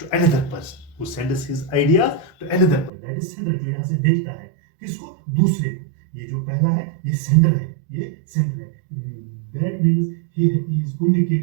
to another person. Who sends his ideas to another person. That is sender. जो यहाँ से भेजता है किसको? दूसरे को. ये जो पहला है, ये sender है. ये sender है. That means he is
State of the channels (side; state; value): left; drops out; at 2.9 s